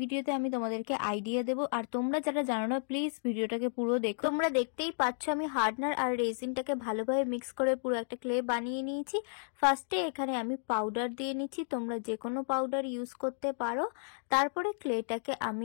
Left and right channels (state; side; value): silent; right; digital silence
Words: আমি তোমাদেরকে আইডিয়া দেবো, আর তোমরা যারা জানো না প্লিজ ভিডিওটাকে পুরো দেখো। তোমরা দেখতেই পাচ্ছ আমি হার্ডনার আর রেজিনটাকে ভালোভাবে মিক্স করে পুরো একটা ক্লে বানিয়ে নিয়েছি। ফার্স্টে এখানে আমি পাউডার দিয়ে নিচ্ছি, তোমরা যে কোনো পাউডার ইউজ করতে পারো। তারপরে ক্লেটাকে